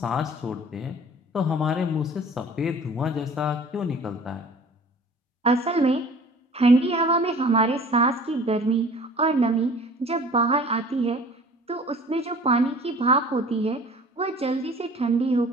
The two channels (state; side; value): normal; both; correlation 0.47